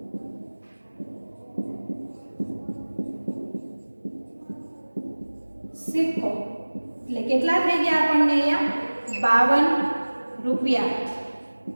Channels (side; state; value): both; inverted; correlation -1.00